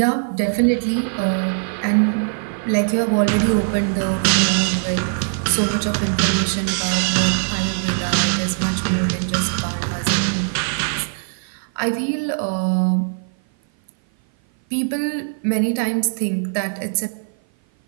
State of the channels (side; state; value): left; silent; 56 dB below the other